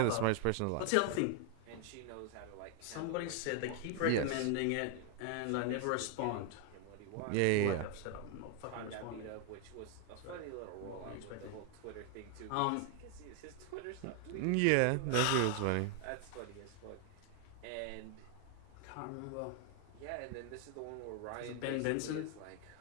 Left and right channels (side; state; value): both; different; correlation 0.00